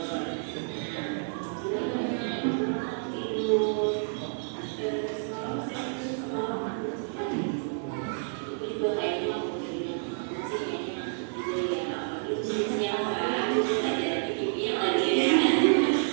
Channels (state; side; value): silent; left; 58 dB below the other